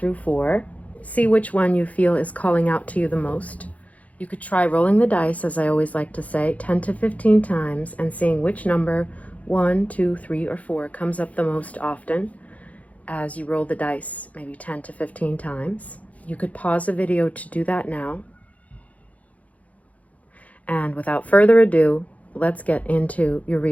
4. See which one you feel is calling out to you the most. You could try rolling the dice, as I always like to say, 10 to 15 times and seeing which number, 1, 2, 3, or 4, comes up the most often as you roll the dice, maybe 10 to 15 times. You could pause the video to do that now. And without further ado, let's get into your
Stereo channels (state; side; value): late; right; 0.069 ms